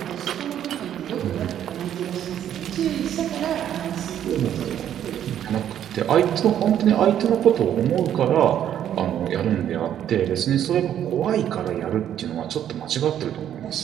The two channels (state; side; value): quieter; left; 10.4 dB